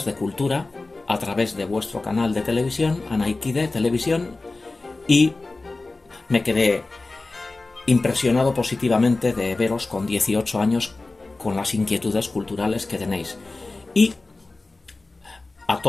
de cultura a través de vuestro canal de televisión, Anaiki de Televisión, y me quedé impresionado positivamente de veros con 18 años con las inquietudes culturales que tenéis. Y a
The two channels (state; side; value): quieter; right; 3.3 dB